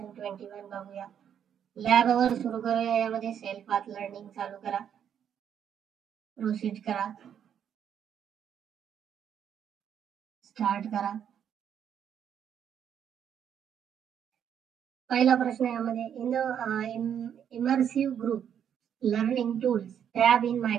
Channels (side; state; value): left; quieter; 8.8 dB